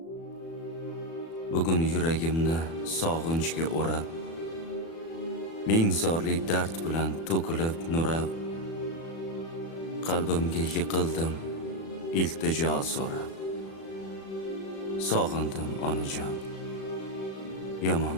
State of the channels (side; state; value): right; late; 36 ms